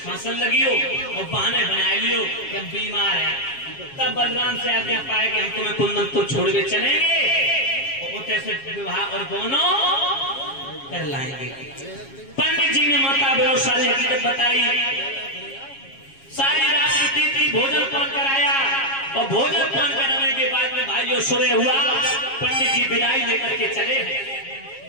लगियो और बहाने बना लियो कि हम बीमार हैं। तब बलराम से आज्ञा पाए कि हम तुम्हें कुंदनपुर छोड़ के चलेंगे और कैसे विवाह और दोनों कर लाएंगे। पंडित जी ने माता बहनों सारी हकीकत बताई। सारी रात बीती थी, भोजन पान कराया और भोजन पान कराने के बाद में भाइयों सुबह हुआ। पंडित जी विदाई लेकर के चले हैं।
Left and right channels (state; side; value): late; right; 7.3 ms